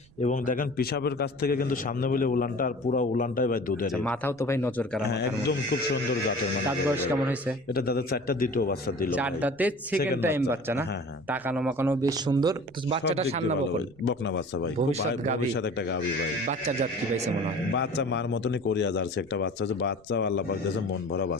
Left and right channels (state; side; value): noise; right; rumble, 28 dB below the sound